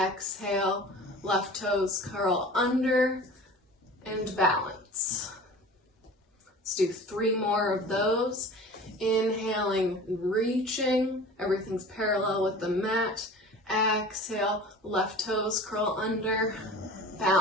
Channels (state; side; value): normal; both; correlation 0.40